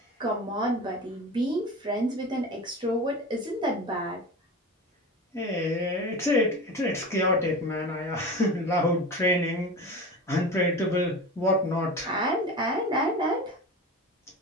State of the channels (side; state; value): both; normal; correlation 0.31